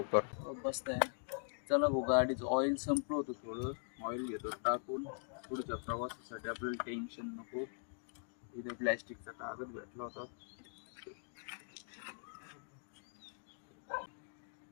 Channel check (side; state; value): right; silent; digital silence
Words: बसताय. चला भाऊ, गाडीचं ऑइल संपलं होतं थोडं. ऑइल घेतो टाकून. पुढच्या प्रवासासाठी आपल्याला टेन्शन नको. इथे प्लॅस्टिकचा कागद भेटला होता.